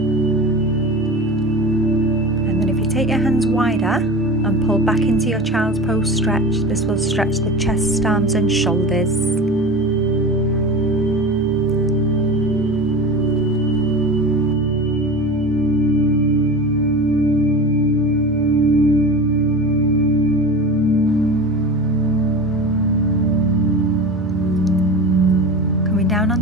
Take your hands wider and pull back into your child's pose stretch. This will stretch the chest, arms and shoulders. Coming down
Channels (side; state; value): both; normal; correlation 0.30